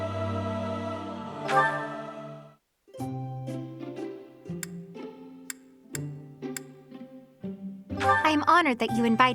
I am honored that you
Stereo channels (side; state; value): both; identical; correlation 1.00